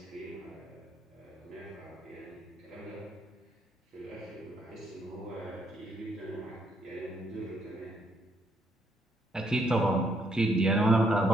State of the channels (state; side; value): normal; both; correlation 0.72